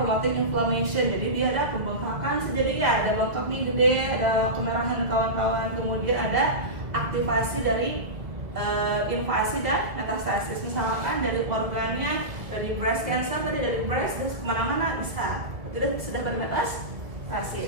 inflammation. Jadi dia ada pembengkakan, jadi ya ada bengkak nih gede, ada kemerahan dan kawan-kawan. Kemudian ada aktivasi dari invasi dan metastasis, misalkan dari organnya, dari breast cancer tadi, dari breast dan kemana-mana bisa, tidak sudah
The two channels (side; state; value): left; late; 1.7 ms